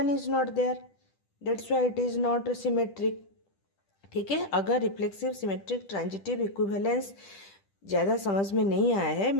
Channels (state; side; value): late; right; 10 ms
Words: is not there. That's why it is not symmetric. ठीक है. अगर रिफ्लेक्सिव, सिमेट्रिक, ट्रांजिटिव, इक्विवेलेंस ज़्यादा समझ में नहीं आया है,